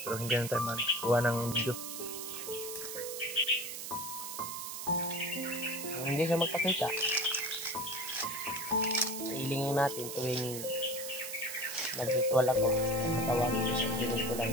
pero hindi na tayo magkuha ng video. Hindi siya magpakita. Hilingin natin tuwing nag-ritual ako. Tawagin ko siya. Hiling ko lang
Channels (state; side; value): noise; right; hiss, 7 dB below the sound